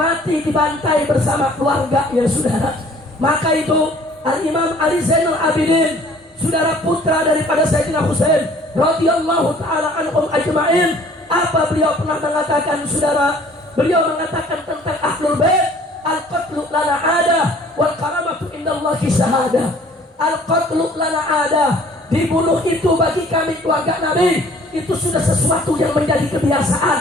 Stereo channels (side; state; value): both; normal; correlation 0.54